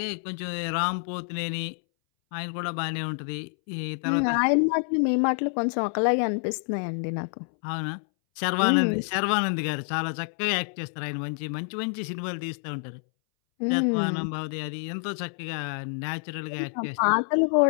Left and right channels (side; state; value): right; silent; 60 dB below the other